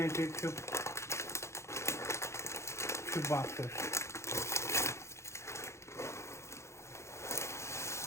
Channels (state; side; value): late; right; 0.13 ms